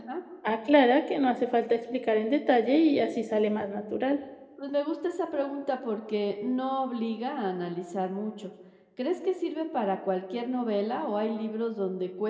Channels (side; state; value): both; identical; correlation 1.00